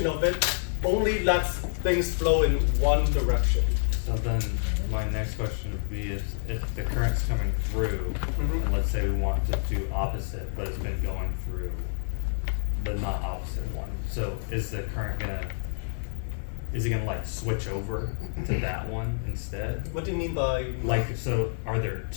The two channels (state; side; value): silent; right; digital silence